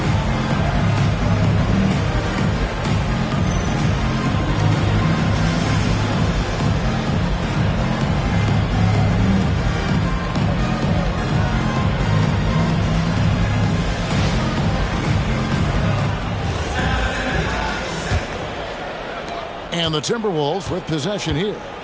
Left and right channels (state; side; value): identical; both; correlation 1.00